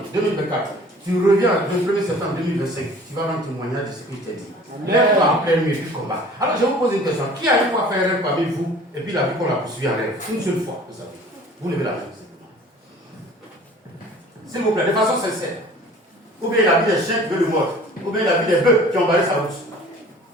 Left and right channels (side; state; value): both; normal; correlation 0.47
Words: 2024. Tu reviens le 1er septembre 2025. Tu vas rendre témoignage de ce que je t'ai dit. Lève-toi en pleine nuit du combat. Alors, je vous pose une question. Qui a une fois fait un rêve parmi vous et puis la vie qu'on l'a poursuivi en rêve? Une seule fois, vous savez. Vous levez la main. S'il vous plaît, de façon sincère. Ou bien la vie des chiens qui veulent le mordre. Ou bien la vie des bœufs qui ont barré sa route.